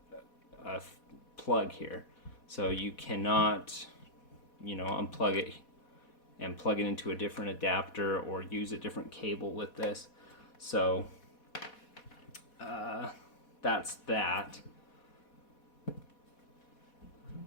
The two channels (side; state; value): right; late; 4.1 ms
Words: plug here, so you cannot unplug it and plug it into a different adapter or use a different cable with this. So that's that.